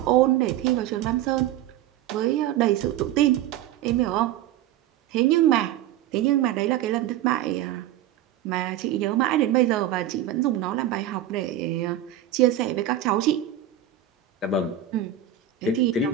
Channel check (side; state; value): left; quieter; 11.5 dB